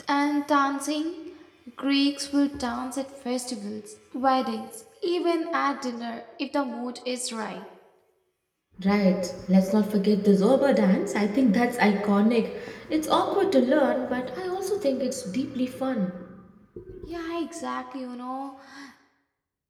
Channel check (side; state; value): both; identical; correlation 1.00